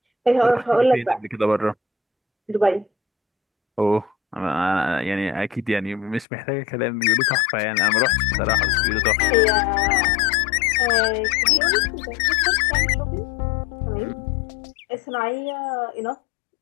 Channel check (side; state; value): right; drops out; at 6.2 s